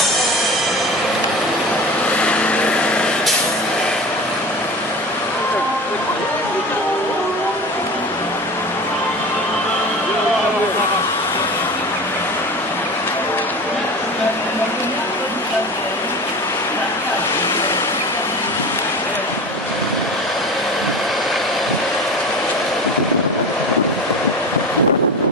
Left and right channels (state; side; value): normal; both; correlation 0.32